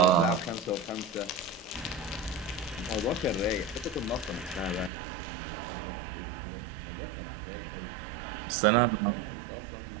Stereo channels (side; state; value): left; drops out; at 4.9 s